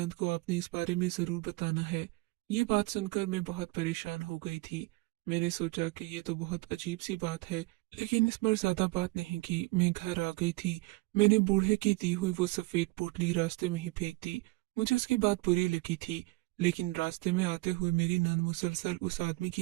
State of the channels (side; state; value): left; quieter; 23.1 dB